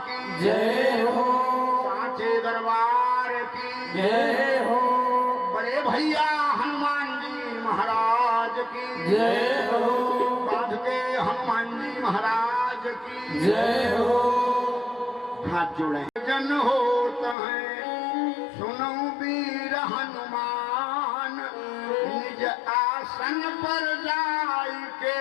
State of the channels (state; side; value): drops out; right; at 17.4 s